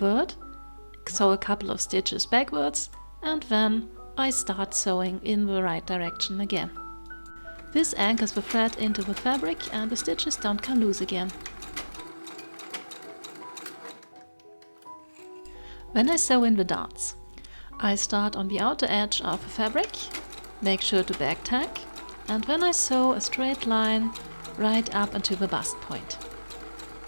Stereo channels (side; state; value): both; inverted; correlation -1.00